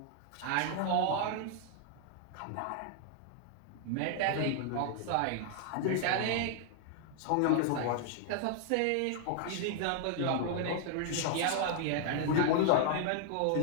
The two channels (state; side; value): different; both; correlation 0.00